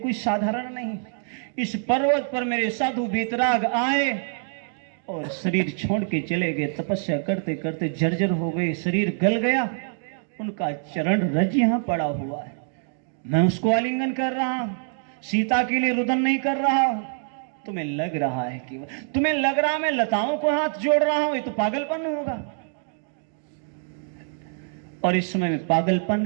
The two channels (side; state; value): left; silent; 62 dB below the other